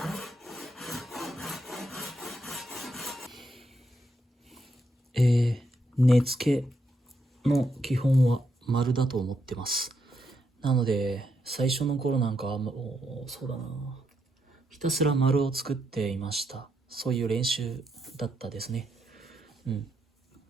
根付けの基本は丸だと思ってます。なので最初の頃なんかはそうだな、ひたすら丸を作っていました。そういう練習だったですね。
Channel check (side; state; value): both; normal; correlation 0.79